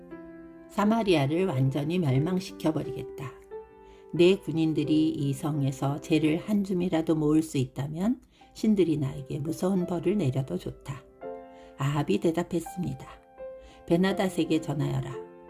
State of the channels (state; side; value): identical; both; correlation 1.00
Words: 사마리아를 완전히 멸망시켜버리겠다. 내 군인들이 이 성에서 재를 한 줌이라도 모을 수 있다면 신들이 나에게 무서운 벌을 내려도 좋다. 아합이 대답했습니다. 베나닷에게 전하여라.